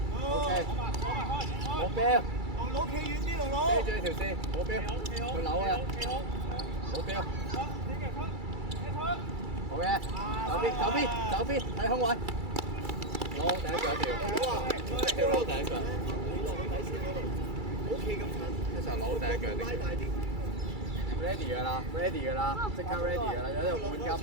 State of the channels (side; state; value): left; late; 2.3 ms